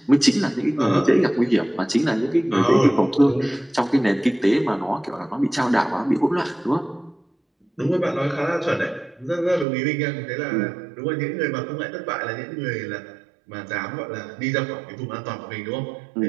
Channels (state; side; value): drops out; left; at 9.7 s